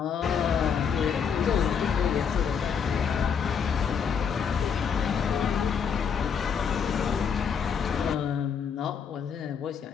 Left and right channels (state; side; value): quieter; right; 6.8 dB